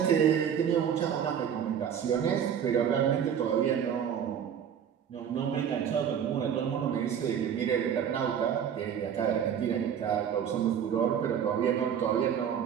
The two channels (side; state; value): left; quieter; 8.4 dB